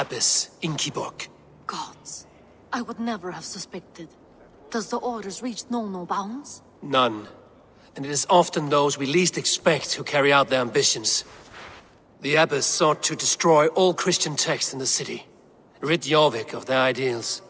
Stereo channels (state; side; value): identical; both; correlation 1.00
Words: Inkiborg. Gods. I would never have suspected. Does the orders reach no bounds? None. And it is often those we least expect who carry out their ambitions. The abbess sought to destroy all Christian texts in the city, rid Jorvik of their ideals.